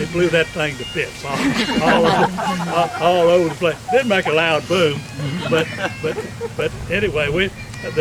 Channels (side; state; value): both; identical; correlation 1.00